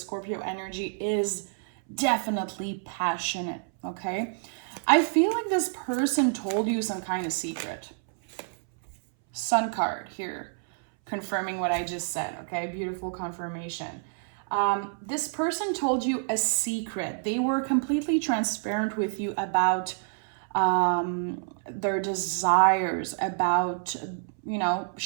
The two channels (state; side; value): silent; left; 59 dB below the other